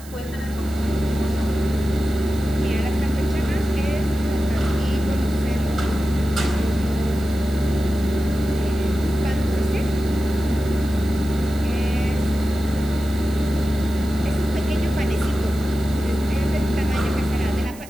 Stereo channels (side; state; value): right; noise; hiss, 20 dB below the sound